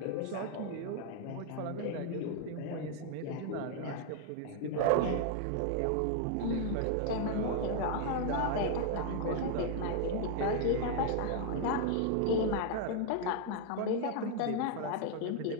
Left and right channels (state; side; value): different; both; correlation 0.00